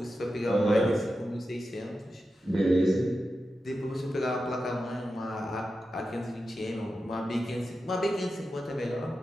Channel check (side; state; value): both; normal; correlation 0.91